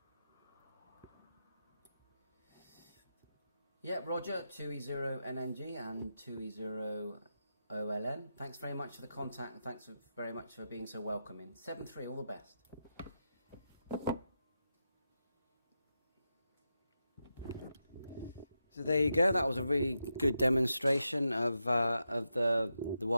Yeah, Roger, 2E0NNG and 2E0OLN. Thanks very much for the contact, and thanks very much for being so welcoming. 73, all the best. So there you go. That was a really good demonstration of the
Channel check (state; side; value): inverted; both; correlation -0.87